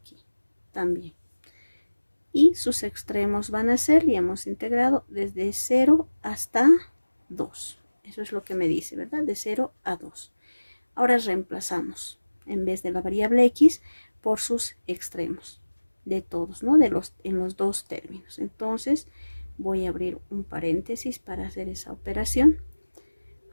también. Y sus extremos van a ser, ya hemos integrado desde 0 hasta 2. Eso es lo que me dice, ¿verdad? De 0 a 2. Ahora reemplazamos en vez de la variable x por sus extremos de todos, ¿no? En los dos términos. Entonces voy a abrir un paréntesis para hacer esa operación.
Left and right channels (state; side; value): inverted; both; correlation -1.00